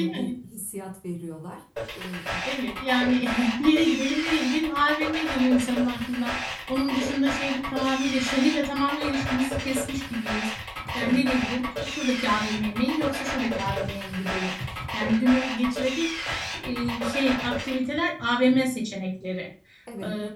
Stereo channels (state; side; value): identical; both; correlation 1.00